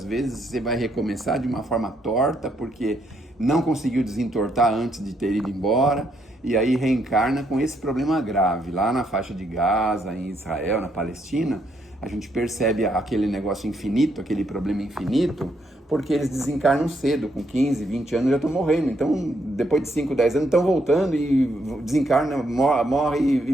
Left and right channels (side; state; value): both; normal; correlation 0.74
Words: vezes você vai recomeçar de uma forma torta porque não conseguiu desentortar antes de ter ido embora e aí reencarna com esse problema grave. Lá na faixa de Gaza, em Israel, na Palestina, a gente percebe aquele negócio infinito, aquele problema infinito, porque eles desencarnam cedo, com 15, 20 anos já estão morrendo. Então, depois de 5, 10 anos, estão voltando e desencarnam, morre e